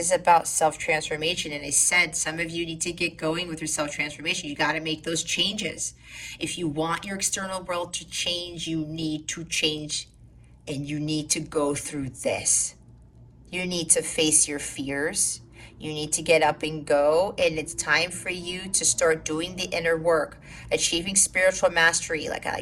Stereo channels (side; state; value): both; identical; correlation 1.00